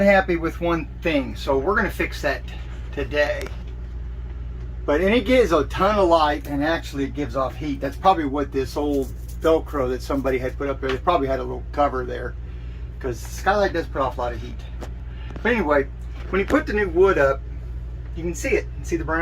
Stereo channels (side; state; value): both; identical; correlation 1.00